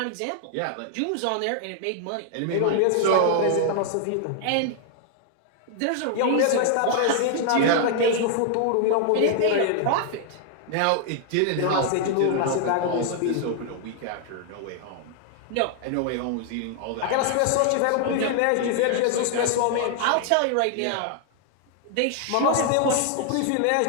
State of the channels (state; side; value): different; both; correlation 0.00